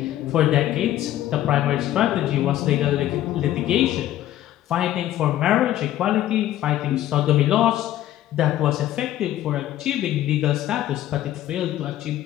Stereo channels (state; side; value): quieter; right; 13.2 dB